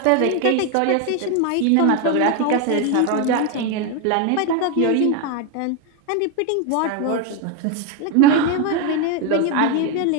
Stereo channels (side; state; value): both; different; correlation 0.02